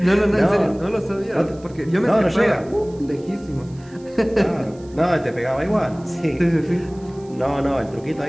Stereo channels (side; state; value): right; noise; hiss, 28 dB below the sound